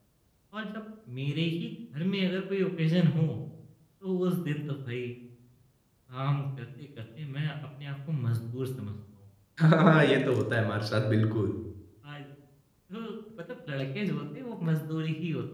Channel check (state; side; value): identical; both; correlation 1.00